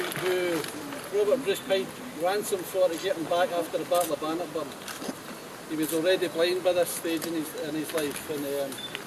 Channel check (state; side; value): identical; both; correlation 1.00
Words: Robert Bruce paid ransom for to get him back after the Battle of Bannockburn. He was already blind by this stage in his life, and